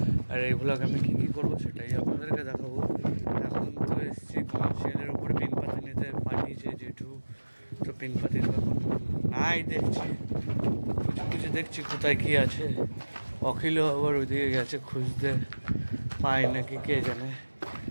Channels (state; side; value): inverted; both; correlation -1.00